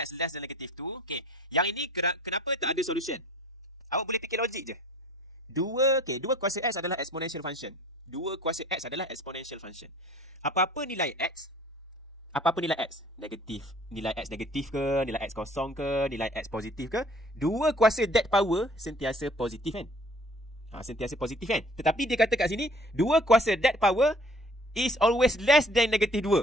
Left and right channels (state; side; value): normal; both; correlation 0.53